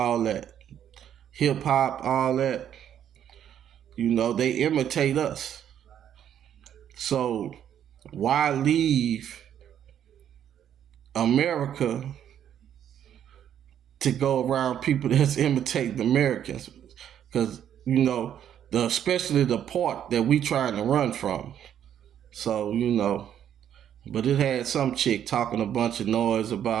that, hip hop, all that. They imitate us. So why leave America to go around people that's imitating Americans? Because especially the part that we trying to run from. So, but it had some chick talking a bunch of noise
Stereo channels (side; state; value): left; quieter; 9.9 dB